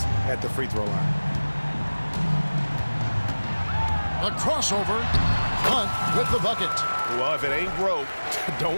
at the free throw line. A crossover. Hunt with the bucket. Well, if it ain't broke,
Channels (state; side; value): inverted; both; correlation -1.00